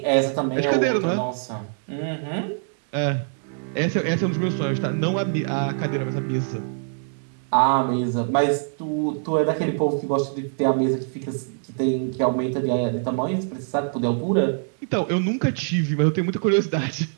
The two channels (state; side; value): silent; left; digital silence